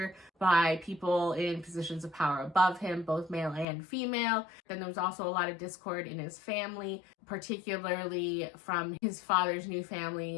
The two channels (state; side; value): drops out; right; at 3.7 s